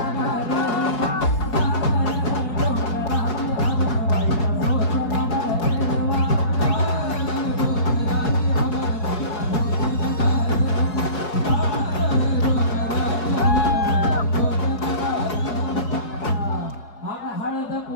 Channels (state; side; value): late; right; 4.9 ms